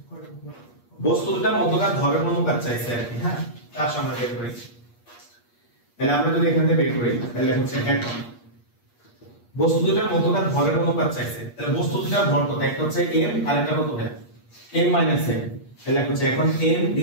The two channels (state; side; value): late; right; 8.4 ms